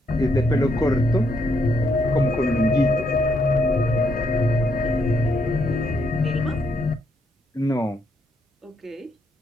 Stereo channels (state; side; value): normal; both; correlation 0.75